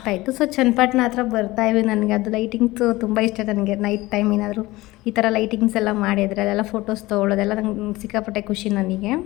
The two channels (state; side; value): quieter; right; 19.4 dB